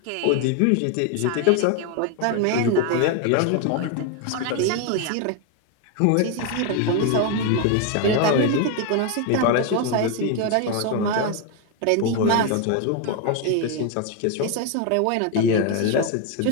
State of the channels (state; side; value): different; both; correlation 0.01